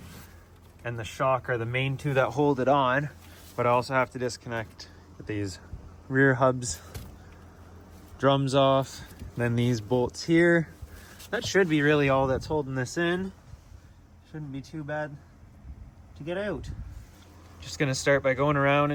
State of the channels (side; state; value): both; identical; correlation 1.00